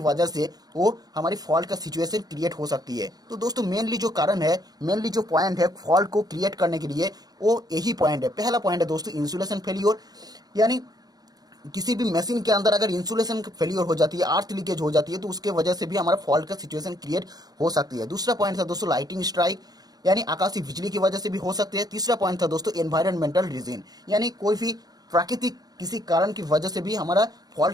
से वो हमारी फॉल्ट का सिचुएशन क्रिएट हो सकती है। तो दोस्तों मेनली जो कारण है, मेनली जो पॉइंट है फॉल्ट को क्रिएट करने के लिए, वो यही पॉइंट है। पहला पॉइंट है दोस्तों इंसुलेशन फेलियर, यानी किसी भी मशीन के अंदर अगर इंसुलेशन फेलियर हो जाती है, अर्थ लीकेज हो जाती है, तो उसके वजह से भी हमारा फॉल्ट का सिचुएशन क्रिएट हो सकती है। दूसरा पॉइंट था दोस्तों लाइटिंग स्ट्राइक, यानी आकाशीय बिजली की वजह से भी हो सकते हैं। तीसरा पॉइंट था दोस्तों एनवायरमेंटल रीजन, यानी कोई भी प्राकृतिक किसी कारण की वजह से भी हमारा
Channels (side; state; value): left; late; 0.19 ms